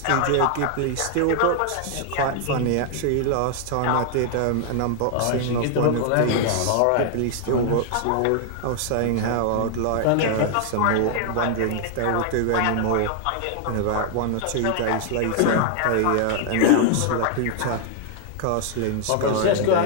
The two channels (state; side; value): different; both; correlation -0.01